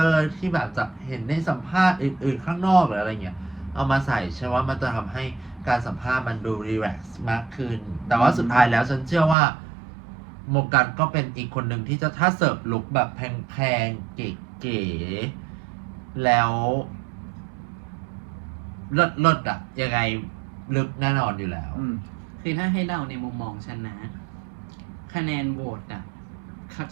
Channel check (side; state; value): left; drops out; at 9.3 s